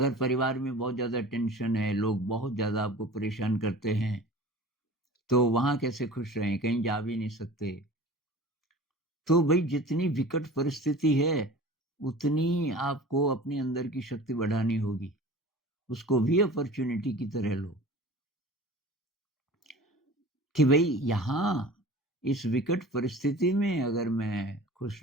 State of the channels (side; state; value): both; normal; correlation 0.40